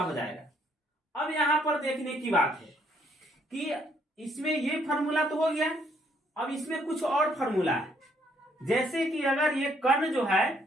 जाएगा। अब यहां पर देखने की बात है कि इसमें ये फॉर्मूला तो हो गया, अब इसमें कुछ और फॉर्मूला है, जैसे कि अगर ये कर्ण जो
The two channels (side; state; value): both; normal; correlation 0.68